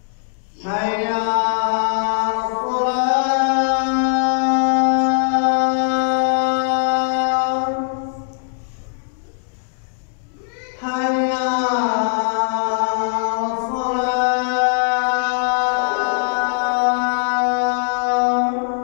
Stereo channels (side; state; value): right; silent; digital silence